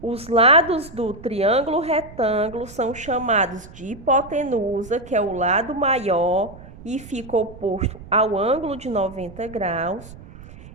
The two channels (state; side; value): noise; right; rumble, 18 dB below the sound